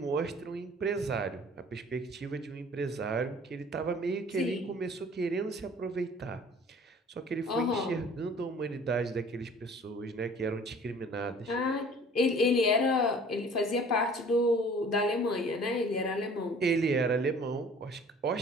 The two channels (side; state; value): both; normal; correlation 0.50